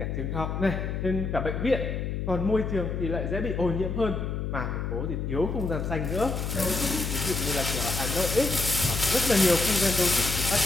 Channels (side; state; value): left; noise; hum, 3 dB below the sound